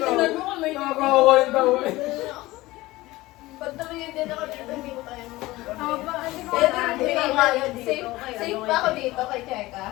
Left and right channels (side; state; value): right; quieter; 18.9 dB